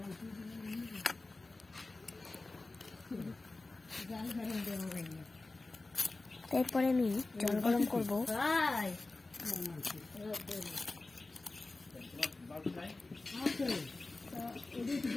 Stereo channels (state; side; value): quieter; right; 3.3 dB